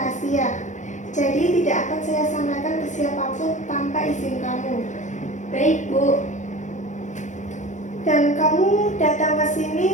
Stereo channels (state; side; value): late; right; 0.35 ms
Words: Jadi tidak akan saya sampaikan ke siapapun tanpa izin kamu. Baik Bu. Dan kamu datang ke